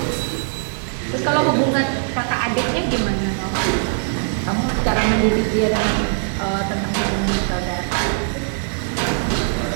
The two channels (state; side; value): silent; left; 61 dB below the other